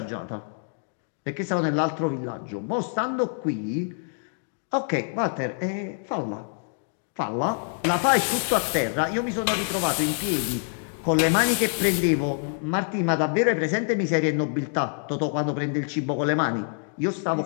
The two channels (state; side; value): silent; right; 61 dB below the other